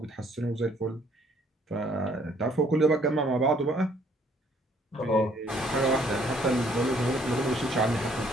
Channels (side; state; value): both; normal; correlation 0.63